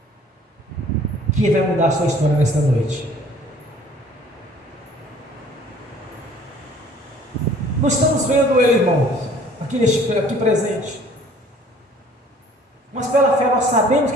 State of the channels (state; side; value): normal; both; correlation 0.54